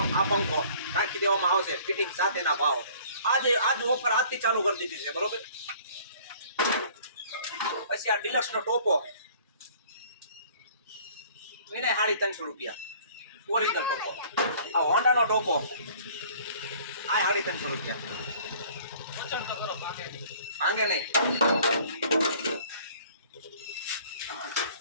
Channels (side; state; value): both; inverted; correlation -0.52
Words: આ પંખો નાખી દેવામાં આવશે ફિટિંગ સાથેના ભાવ આજ ઓફર આજથી ચાલુ કરી દીધી છે બરોબર પછી આ ડિલક્સ નો ટોપો એને 350 રૂપિયા ઓરિજિનલ ટોપો આ હોન્ડા નો ટોપો આ 350 રૂપિયા માંગે નહીં